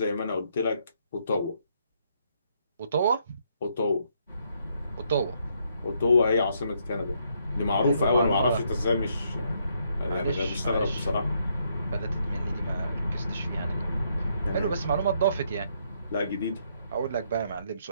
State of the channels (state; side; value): inverted; both; correlation -0.73